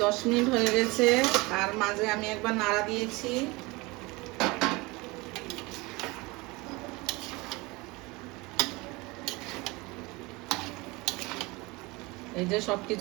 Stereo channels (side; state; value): left; quieter; 24.0 dB